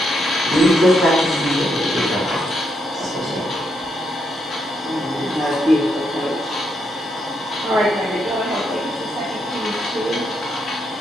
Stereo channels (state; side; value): normal; both; correlation 0.79